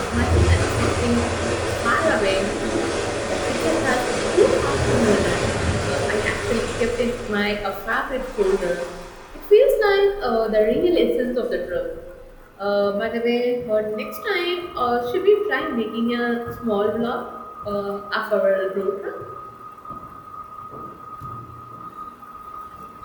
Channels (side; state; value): both; identical; correlation 1.00